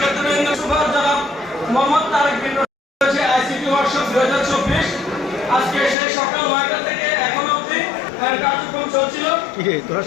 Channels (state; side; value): drops out; right; at 6.0 s